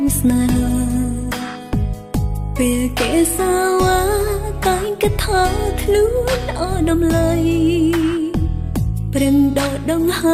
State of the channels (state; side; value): identical; both; correlation 1.00